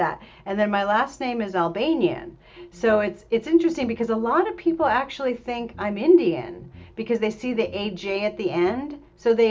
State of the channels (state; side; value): identical; both; correlation 1.00